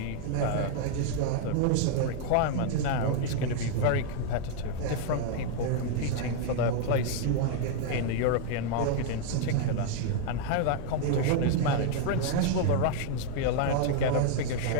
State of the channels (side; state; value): both; different; correlation 0.00